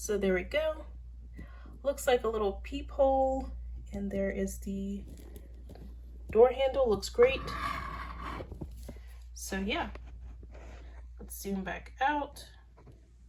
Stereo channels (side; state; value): both; identical; correlation 1.00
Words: there we go. Looks like a little peephole, and there is the door handle. Looks great. So yeah, let's zoom back out.